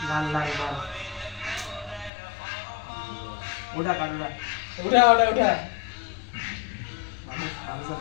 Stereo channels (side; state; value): right; drops out; at 2.1 s